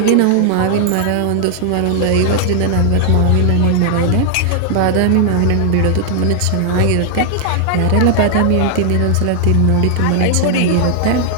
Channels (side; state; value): both; different; correlation 0.00